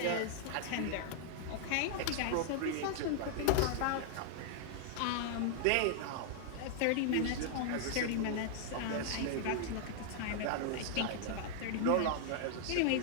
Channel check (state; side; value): different; both; correlation -0.01